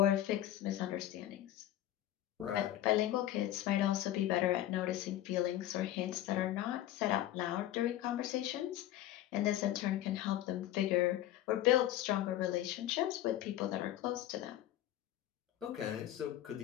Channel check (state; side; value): quieter; right; 13.2 dB